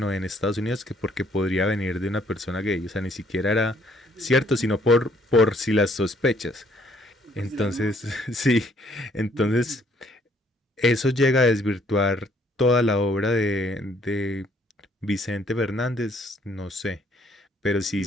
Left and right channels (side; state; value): both; normal; correlation 0.64